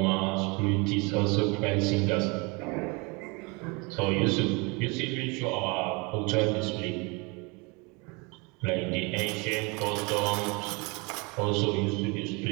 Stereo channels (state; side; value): quieter; left; 28.9 dB